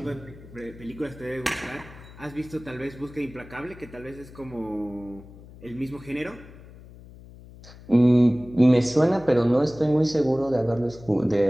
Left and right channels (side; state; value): left; noise; hum, 19 dB below the sound